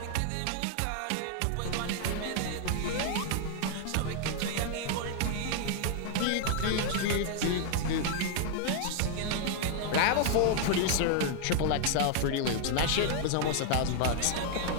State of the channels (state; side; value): different; both; correlation 0.00